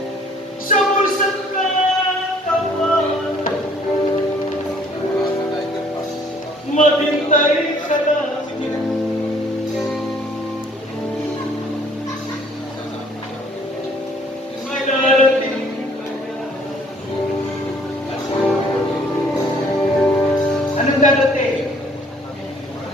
sa bulsang katawan. Maghintay ka lang, may darating ka na. Anong darating?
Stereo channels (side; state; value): both; normal; correlation 0.59